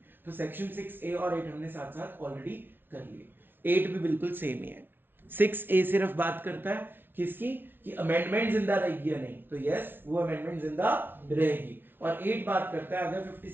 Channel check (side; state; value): left; late; 0.10 ms